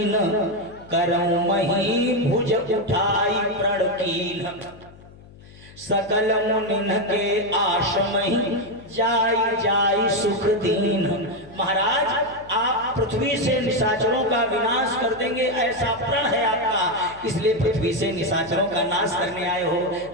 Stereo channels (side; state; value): left; noise; hum, 22 dB below the sound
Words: करऊं मही भुज उठाई प्रण कीन, सकल मुनिन के आश्रमहि जाई जाई सुख दीन। महाराज आप पृथ्वी से निशाचरों का विनाश कर देंगे ऐसा प्रण है आपका, इसलिए पृथ्वी से निशाचरों का नाश करने आए हो।